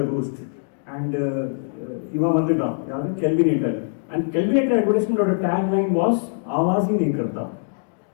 roost and இவன் வந்துட்டான் யாரு Kelvinator and Kelvinator advertisementோட tagline was आवाज ही नहीं करता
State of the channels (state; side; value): silent; right; digital silence